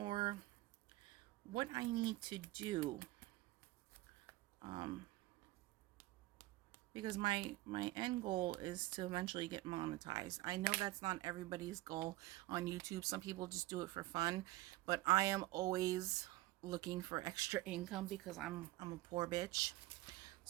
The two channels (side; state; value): left; quieter; 18.2 dB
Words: what I need to do. Because my end goal is to eventually get monetized. I know that's not everybody's goal on YouTube. Some people just do it for fun, but I am always looking for extra income because I'm a poor bitch.